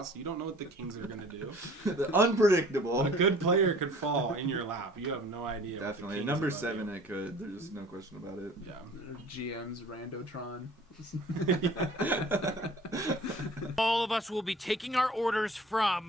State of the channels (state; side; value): normal; both; correlation 0.48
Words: You don't know what the Kings are going to do. The unpredictable. A good player could fall in your lap. You have no idea. Definitely. What the Number Kings 7 it could. There's no question about it. Yeah. GM's Randotron. All of us will be taking our orders